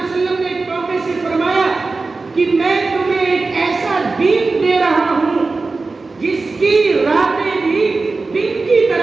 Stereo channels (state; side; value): quieter; left; 3.8 dB